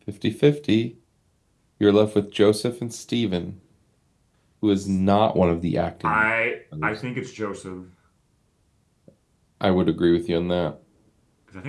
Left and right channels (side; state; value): both; identical; correlation 1.00